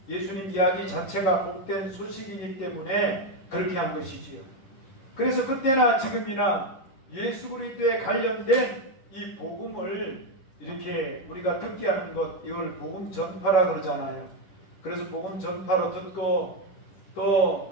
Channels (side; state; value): right; late; 11 ms